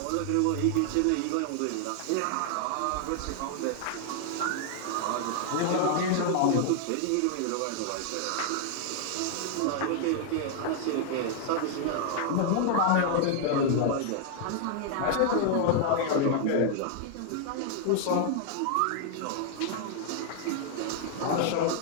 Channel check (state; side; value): different; both; correlation 0.00